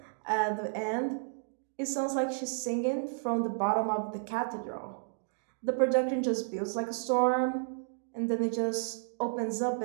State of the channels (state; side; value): silent; left; digital silence